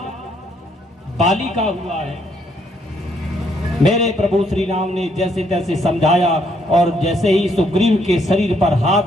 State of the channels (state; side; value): normal; both; correlation 0.71